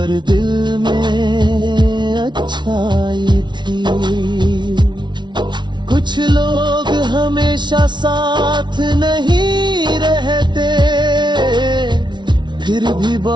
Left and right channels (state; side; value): late; left; 0.22 ms